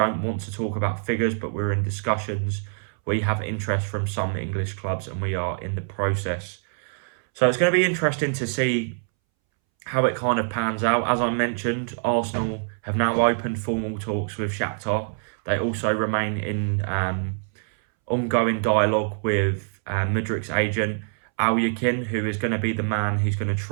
want to talk about figures, but we're in discussions. We have interest from some English clubs and we are in the process. So it's going to be interesting to see how it kind of pans out. As I mentioned, Arsenal have now opened formal talks with Shakhtar. They also remain in ongoing dialogue with Mudryk's agent, Alyokin, who is going to be the man who's going to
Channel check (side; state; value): left; silent; 62 dB below the other